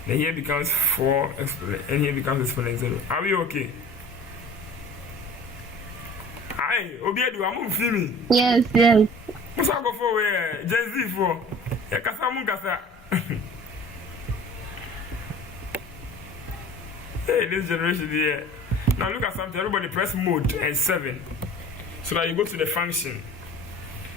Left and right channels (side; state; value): both; normal; correlation 0.44